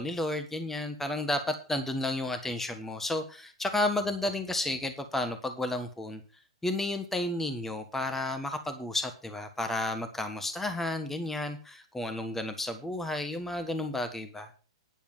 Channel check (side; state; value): both; normal; correlation 0.65